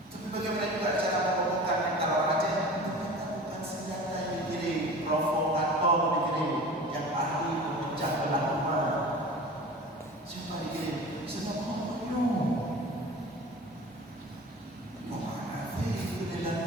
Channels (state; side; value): normal; both; correlation 0.38